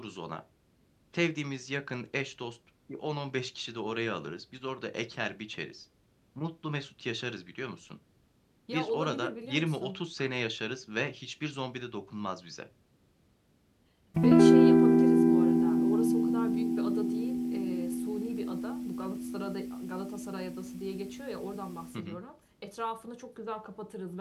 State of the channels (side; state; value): both; identical; correlation 1.00